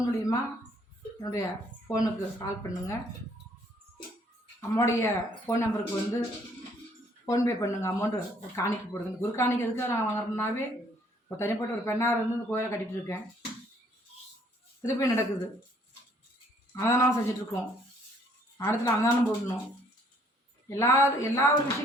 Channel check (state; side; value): normal; both; correlation 0.63